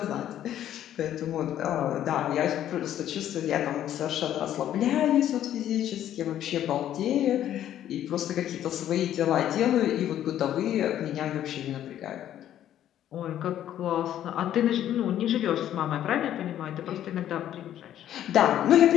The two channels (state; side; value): quieter; right; 11.4 dB